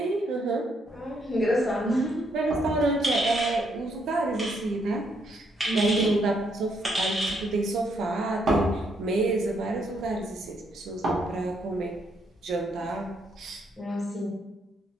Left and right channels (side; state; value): both; normal; correlation 0.74